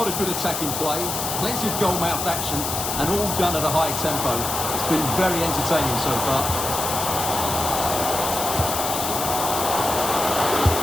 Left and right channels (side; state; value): left; noise; hiss, 3 dB below the sound